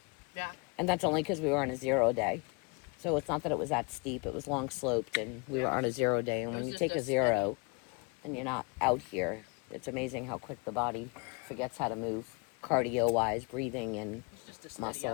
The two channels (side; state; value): right; quieter; 31.5 dB